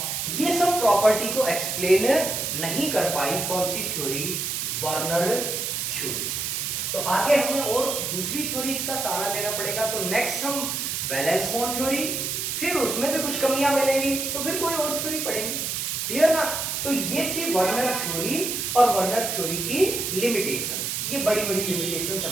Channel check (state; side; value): noise; right; hiss, 2 dB below the sound